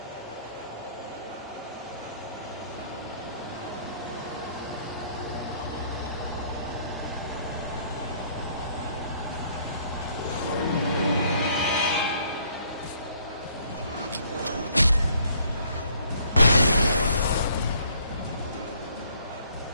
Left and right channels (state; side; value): inverted; both; correlation -0.63